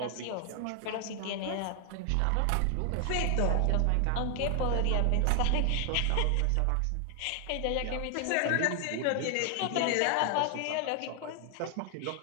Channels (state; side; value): different; both; correlation 0.00